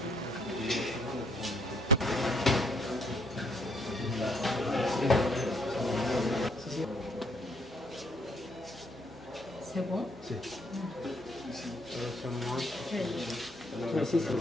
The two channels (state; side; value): normal; both; correlation 0.68